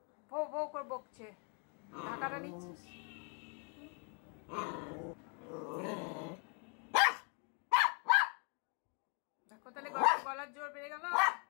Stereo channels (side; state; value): right; quieter; 37.4 dB